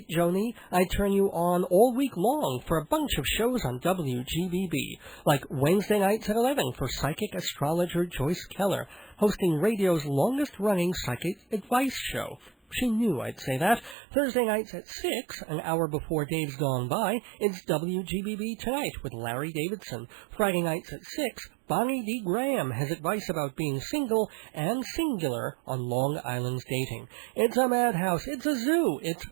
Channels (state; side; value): drops out; left; at 14.0 s